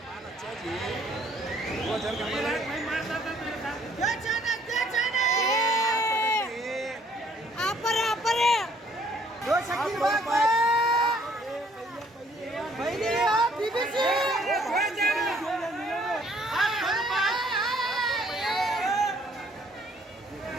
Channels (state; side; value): normal; both; correlation 0.62